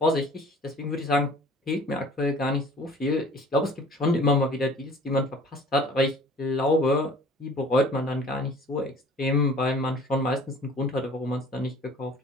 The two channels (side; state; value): both; normal; correlation 0.49